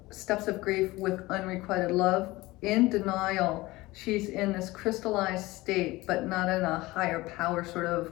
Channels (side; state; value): right; quieter; 20.0 dB